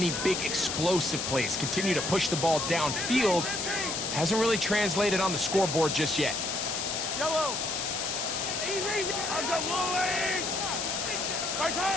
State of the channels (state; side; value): noise; left; hiss, 2 dB below the sound